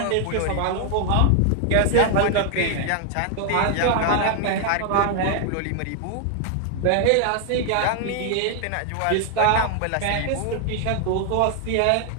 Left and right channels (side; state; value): both; different; correlation 0.00